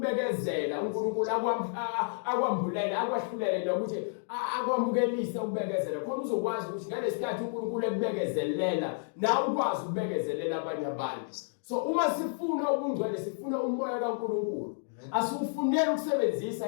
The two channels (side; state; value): right; silent; digital silence